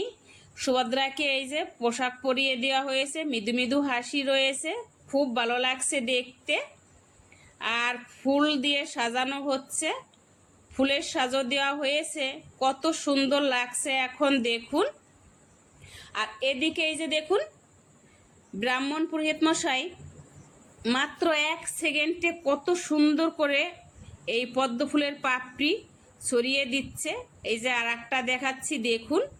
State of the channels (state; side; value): identical; both; correlation 1.00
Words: সুভদ্রাকে এই যে পোশাক পরিয়ে দেওয়া হয়েছে, মৃদু মৃদু হাসি রয়েছে, খুব ভালো লাগছে দেখতে। আর ফুল দিয়ে সাজানো হচ্ছে, ফুলের সাজো দেওয়া হয়েছে, কত সুন্দর লাগছে এখন দেখুন। আর এদিকে এই যে দেখুন, ব্রাহ্মণ পুরোহিত মশাই মাত্র 1 সেকেন্ডে কত সুন্দর করে এই পদ্ম ফুলের পাপড়ি ছড়িয়ে দিচ্ছে। এই যে আর একটা দেখাচ্ছি দেখুন,